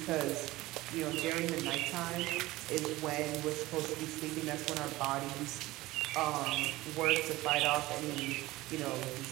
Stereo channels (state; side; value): quieter; left; 18.6 dB